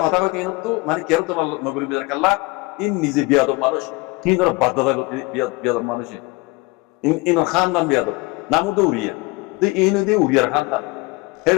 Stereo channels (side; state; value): right; quieter; 25.0 dB